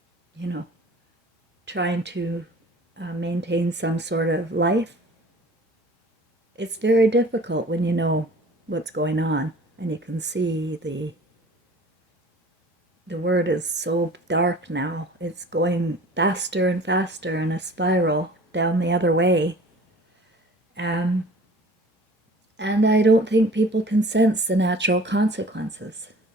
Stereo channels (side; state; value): both; normal; correlation 0.46